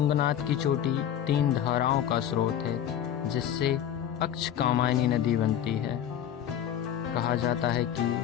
की चोटी 3 धाराओं का स्रोत है, जिससे अक्ष कामायनी नदी बनती है। कहा जाता है कि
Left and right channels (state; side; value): quieter; right; 10.1 dB